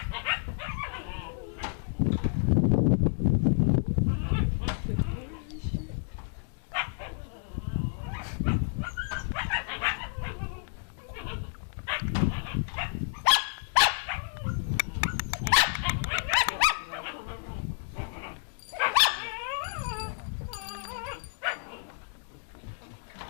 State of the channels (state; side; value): silent; right; digital silence